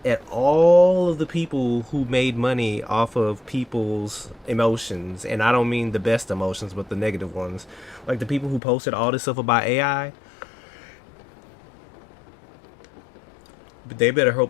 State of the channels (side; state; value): right; drops out; at 8.6 s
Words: at all of the people who made money off of people's emotions. And I don't mean the best emotions, but the negative ones. Like the people who posted all this stuff about AI. But they better